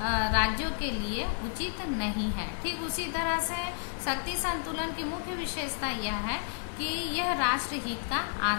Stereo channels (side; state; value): right; silent; digital silence